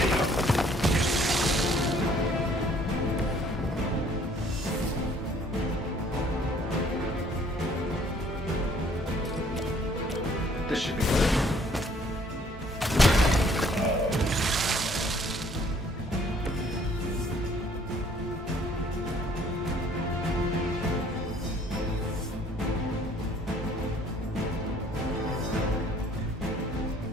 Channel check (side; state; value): both; normal; correlation 0.60